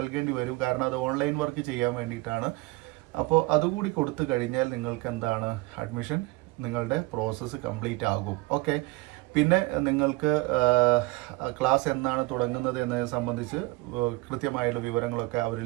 വരും. കാരണം അത് ഓൺലൈൻ വർക്ക് ചെയ്യാൻ വേണ്ടിയിട്ടാണ്. അപ്പോൾ അതുകൂടി കൊടുത്തു കഴിഞ്ഞാൽ നിങ്ങൾക്ക് അഡ്മിഷൻ നിങ്ങളുടെ പ്രോസസ്സ് കംപ്ലീറ്റ് ആകും. ഓക്കെ, പിന്നെ നിങ്ങൾക്ക് ക്ലാസ് എന്നാണ് തുടങ്ങുന്നത് എന്നതിനെ സംബന്ധിച്ച് കൃത്യമായുള്ള വിവരങ്ങളൊക്കെ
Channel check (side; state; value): left; quieter; 22.4 dB